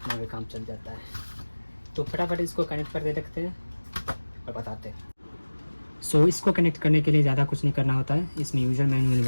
काम चल जाता है। तो फटाफट इसको कनेक्ट करके देखते हैं और बताते हैं। सो इसको कनेक्ट करने के लिए ज़्यादा कुछ नहीं करना होता है। इसमें यूज़र मैनुअल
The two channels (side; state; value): both; inverted; correlation -1.00